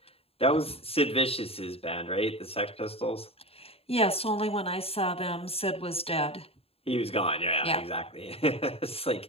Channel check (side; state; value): right; late; 0.28 ms